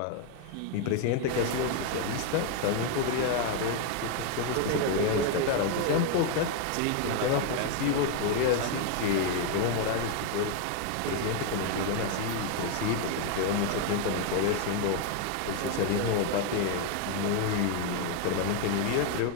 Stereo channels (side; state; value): both; different; correlation 0.01